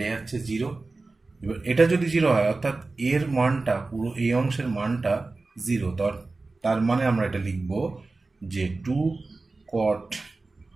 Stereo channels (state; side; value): quieter; left; 3.5 dB